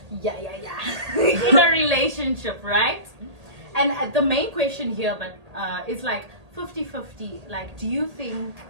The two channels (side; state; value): left; late; 1.8 ms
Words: Yeah. In a relationship, right? And the main question here, is like 50-50. Like, do you think